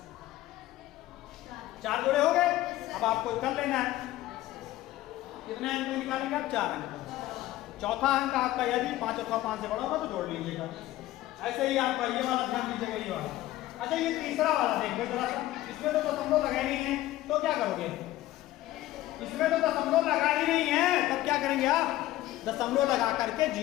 चार जोड़े हो गए। अब आपको कर लेना है, कितने अंक निकालेंगे आप, 4 अंक। चौथा अंक आपका यदि 5 अथवा 5 से बड़ा होगा तो जोड़ लीजिएगा। ऐसे ही आपका ये वाला ध्यान दीजिएगा, ये वाला। अच्छा ये तीसरा वाला देखो जरा सा, इसमें तो दशमलव लगा ही नहीं है, तो क्या करोगे, इसमें तो दशमलव लगा ही नहीं है, तब क्या करेंगे आप, दशमलव लगा करके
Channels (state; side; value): quieter; right; 15.5 dB